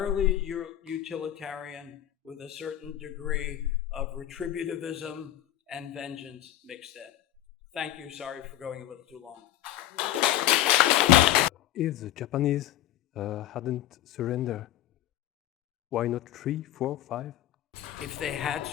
utilitarian with a certain degree of retributivism and vengeance mixed in. Thank you. Sorry for going a little too long. If the Japanese hadn't surrendered, why not 3, 4, 5? If they had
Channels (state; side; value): quieter; right; 13.2 dB